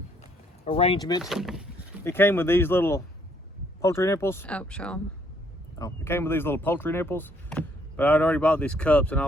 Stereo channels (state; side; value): normal; both; correlation 0.67